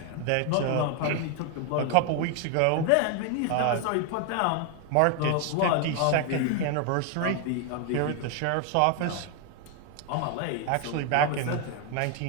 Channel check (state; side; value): different; both; correlation 0.01